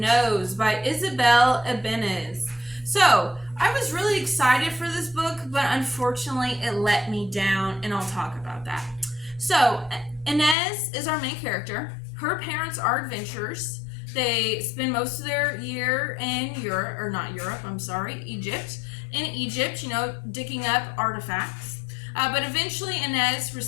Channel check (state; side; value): drops out; right; at 10.6 s